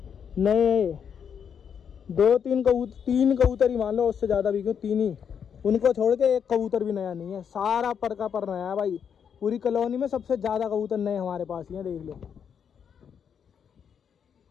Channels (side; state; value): right; quieter; 7.6 dB